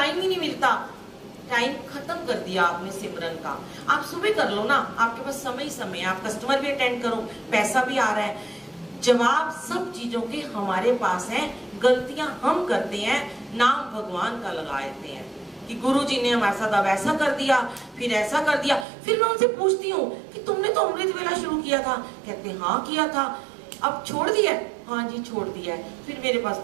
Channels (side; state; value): left; drops out; at 18.9 s